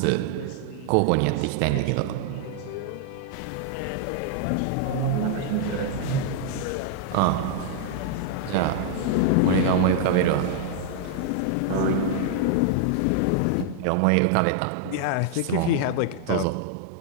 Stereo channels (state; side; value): different; both; correlation -0.01